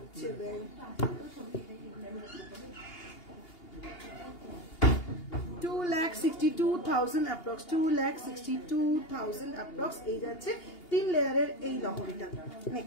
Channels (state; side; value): late; right; 2.8 ms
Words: ব্যাং, 2,62,000 অ্যাপ্রক্স, 2,62,000 অ্যাপ্রক্স। এই যাচ্ছে 3 লেয়ারের এই লহরিটা।